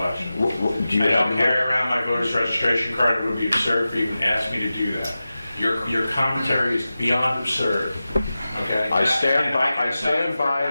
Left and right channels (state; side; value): inverted; both; correlation -0.95